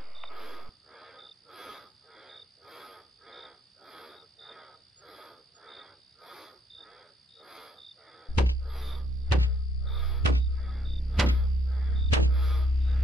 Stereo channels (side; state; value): both; normal; correlation 0.70